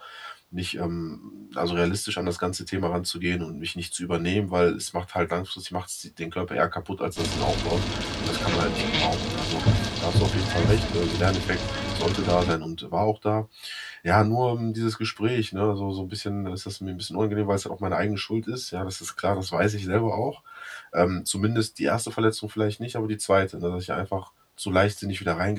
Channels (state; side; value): identical; both; correlation 1.00